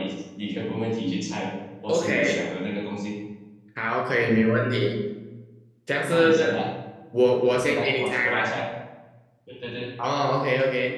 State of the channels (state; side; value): identical; both; correlation 1.00